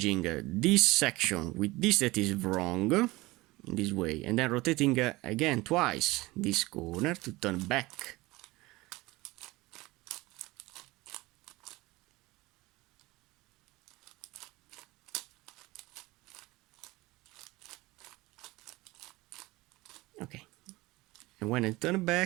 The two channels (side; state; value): left; quieter; 20.9 dB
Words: this section with this that is wrong in this way, and then rotating again twice this corner to turn back. Okay, and when I turn